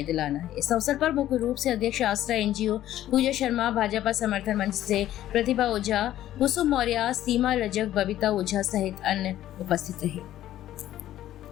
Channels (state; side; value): quieter; right; 13.0 dB